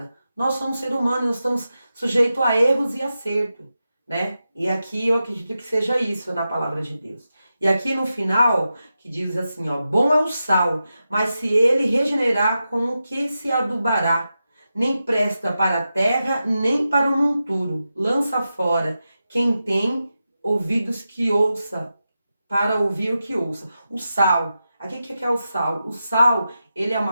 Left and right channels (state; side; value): inverted; both; correlation -0.90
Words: Nós somos seres humanos, nós estamos sujeitos a erros e acerto, né? E aqui eu acredito que seja isso na palavra de Deus. E aqui no final, que diz assim, ó, bom é o sal, mas se ele regenerar, com o que se adubará? Nem presta para a terra, nem para o monturo. Lança fora. Quem tem ouvidos que ouça, para ouvir o que ouça. O sal. Aqui o que é o sal? O sal, ele é